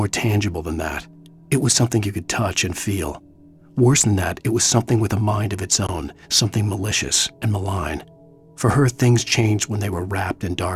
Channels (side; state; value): both; identical; correlation 1.00